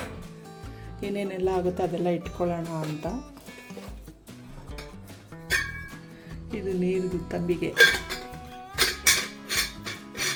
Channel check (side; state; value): both; identical; correlation 1.00